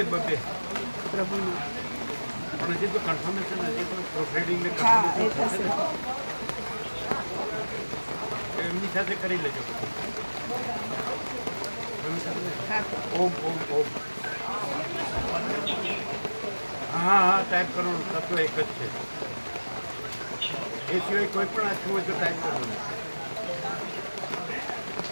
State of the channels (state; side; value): inverted; both; correlation -1.00